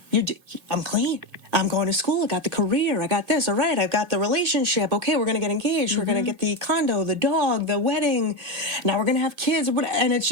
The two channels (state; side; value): late; left; 2.1 ms